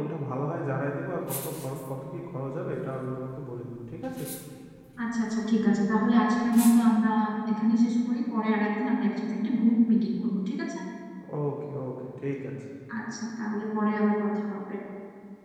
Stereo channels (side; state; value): both; identical; correlation 1.00